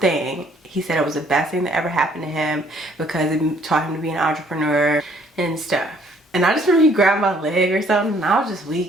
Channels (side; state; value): both; normal; correlation 0.62